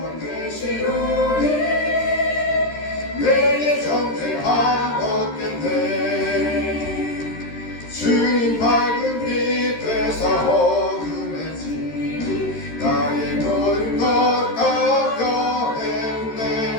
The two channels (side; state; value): right; late; 13 ms